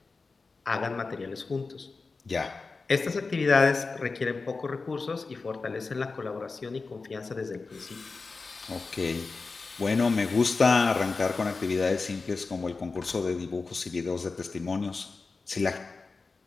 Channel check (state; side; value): quieter; right; 4.1 dB